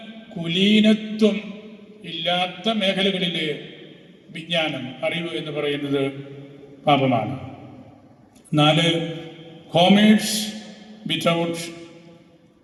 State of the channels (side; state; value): both; identical; correlation 1.00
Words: കുലീനത്വം ഇല്ലാത്ത മേഖലകളിലെ വിജ്ഞാനം, അറിവ് എന്ന് പറയുന്നത് പാപമാണ്. 4, കോമേഴ്സ് വിത്തൗട്ട്